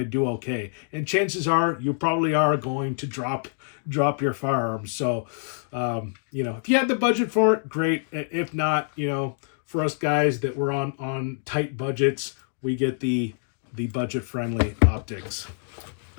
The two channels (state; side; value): silent; right; digital silence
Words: do okay. And chances are you probably are going to drop your firearms. So, if you have the budget for it, great. If not, for us guys that were on tight budgets, we get the budget-friendly optics.